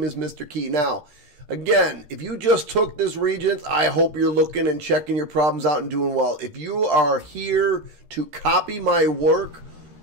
is Mr. Key. Now, again, if you just took this Regents, I hope you're looking and checking your problems out and doing well. If you are here to copy my work,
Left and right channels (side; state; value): left; late; 13 ms